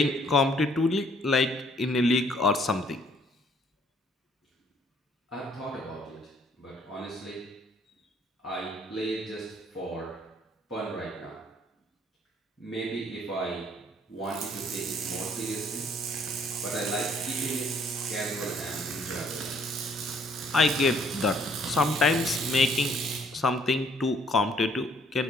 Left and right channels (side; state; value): both; normal; correlation 0.63